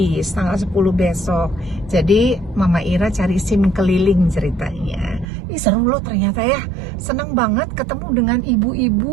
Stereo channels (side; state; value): left; drops out; at 5.2 s